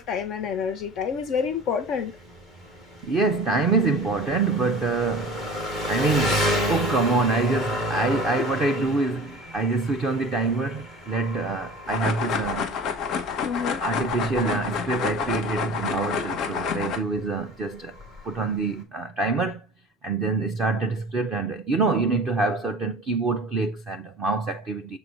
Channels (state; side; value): normal; both; correlation 0.39